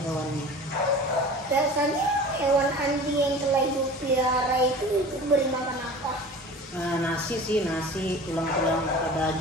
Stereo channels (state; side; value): normal; both; correlation 0.39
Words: hewannya. Biasanya hewan anjing yang telah Ibu pelihara itu beri makan apa? Nasi sih, nasi, tulang-tulang atau